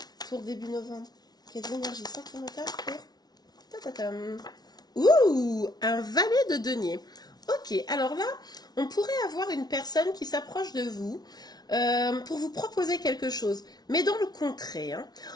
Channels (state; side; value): late; right; 0.19 ms